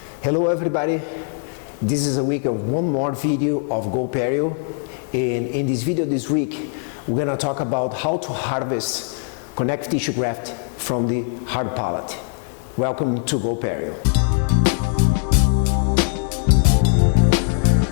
Hello everybody, this is a week of one more video of GoPerio, and in this video this week we're going to talk about how to harvest connective tissue graft from the hard palate. Welcome to GoPerio.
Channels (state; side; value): silent; right; 62 dB below the other